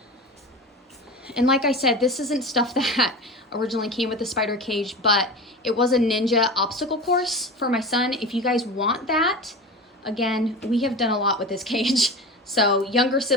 And like I said, this isn't stuff that originally came with the SpiderCage, but it was a ninja obstacle course for my son. If you guys want that, again, we have done a lot with this cage. So younger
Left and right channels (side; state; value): both; normal; correlation 0.30